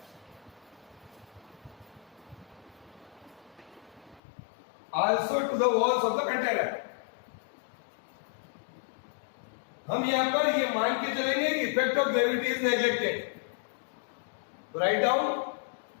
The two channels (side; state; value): right; drops out; at 4.2 s